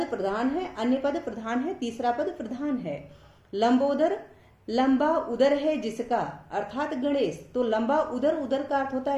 प्रधान है, अन्य पद प्रधान है, तीसरा पद प्रधान है। लंबोदर, लंबा उदर है जिसका, अर्थात गणेश। तो लंबा उदर, उदर का अर्थ होता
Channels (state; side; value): identical; both; correlation 1.00